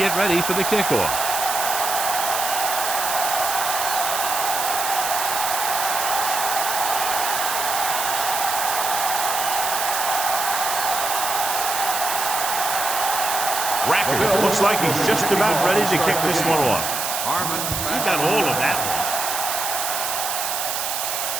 ready for the kickoff. Rackers looks like he's just about ready to kick this one off. He got all of that one.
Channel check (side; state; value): right; noise; hiss, 2 dB below the sound